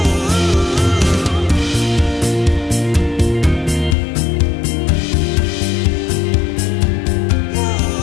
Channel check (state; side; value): drops out; right; at 4.0 s